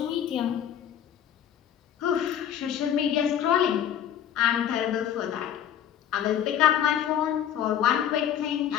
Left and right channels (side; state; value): right; quieter; 9.8 dB